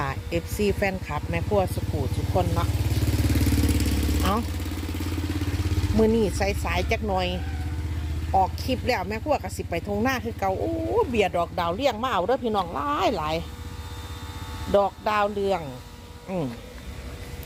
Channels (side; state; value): both; identical; correlation 1.00